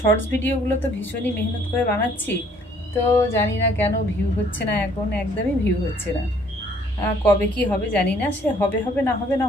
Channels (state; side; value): normal; both; correlation 0.61